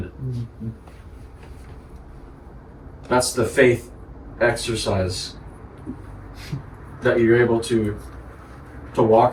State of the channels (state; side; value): identical; both; correlation 1.00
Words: it. That's the faith exercise that you're able to